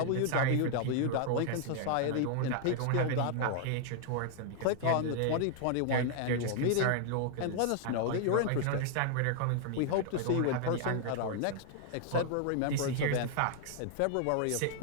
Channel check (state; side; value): different; both; correlation 0.00